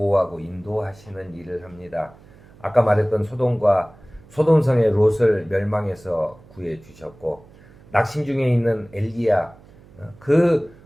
인도하시는 일을 합니다. 아까 말했던 소돔성의 롯을 멸망해서 구해 주셨고, 낙심 중에 있는 엘리야, 그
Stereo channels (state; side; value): noise; right; hum, 24 dB below the sound